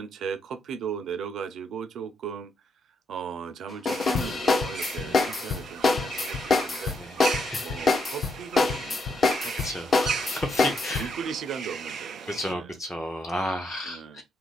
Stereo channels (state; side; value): normal; both; correlation 0.77